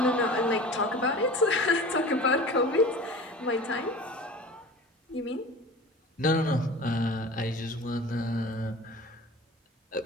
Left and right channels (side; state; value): both; normal; correlation 0.38